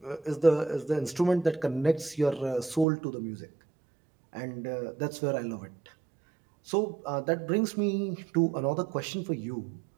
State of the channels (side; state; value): left; drops out; at 2.9 s